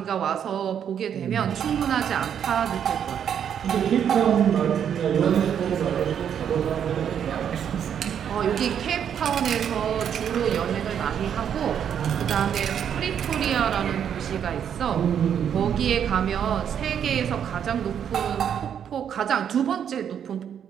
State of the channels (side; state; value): left; quieter; 8.6 dB